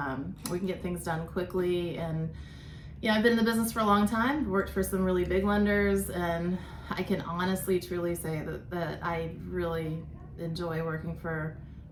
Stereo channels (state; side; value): identical; both; correlation 1.00